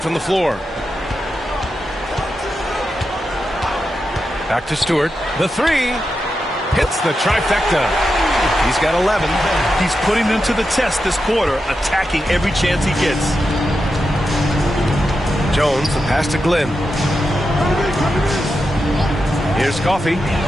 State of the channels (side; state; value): both; normal; correlation 0.88